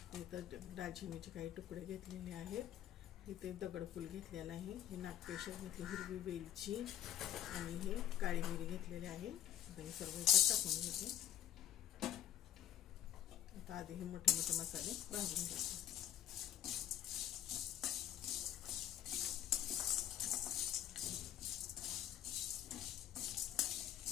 इथं दालचिनीचे काही तुकडे घेतलेले आहेत. इथे दगडफूल घेतलेला आहे, हे नागकेशर घेतले, हिरवी वेलची आणि हे काळी मिरी घेतलेले आहे. आता हे सर्व इथे टाकून घेते. आता आधी हे मोठे मोठे मसाले भाजून घेते.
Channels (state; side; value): quieter; right; 12.0 dB